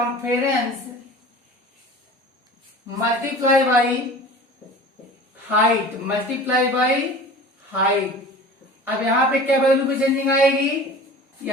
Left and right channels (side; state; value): both; normal; correlation 0.40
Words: multiply by height. अब यहाँ पे क्या वैल्यू पे चेंजिंग आएगी,